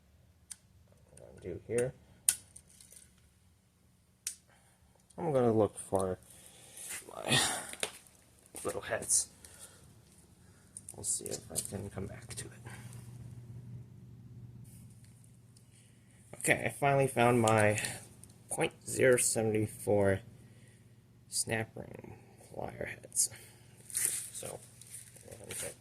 what I'm going to do here, I'm going to look for my little heads. We'll see if I can come back to it. Okay, I finally found my .074 snap ring plier heads. So, I'm going to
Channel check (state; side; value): identical; both; correlation 1.00